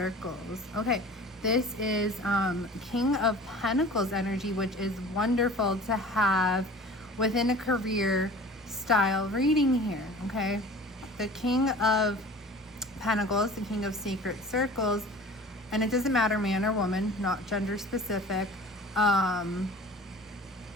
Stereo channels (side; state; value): both; normal; correlation 0.42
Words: Okay, this is King of Pentacles energy, which is wonderful to have within a career style reading here, okay? The King of Pentacles, the King of Sacred Circles, and it doesn't matter man or woman, not gender specific,